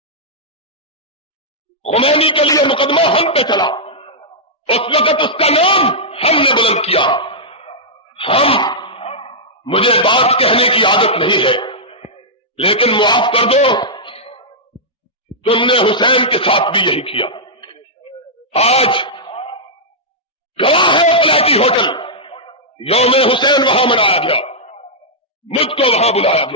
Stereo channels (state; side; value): normal; both; correlation -0.09